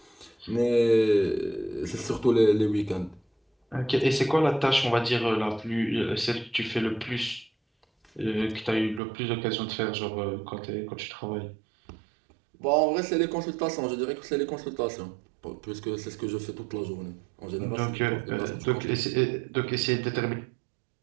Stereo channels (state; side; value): drops out; left; at 9.0 s